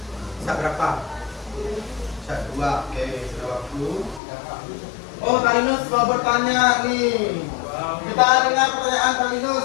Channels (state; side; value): drops out; right; at 4.2 s